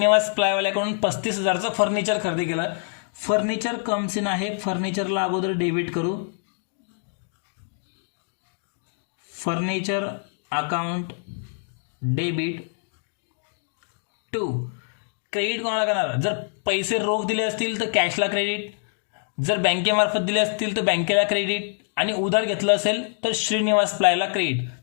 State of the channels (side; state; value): right; silent; digital silence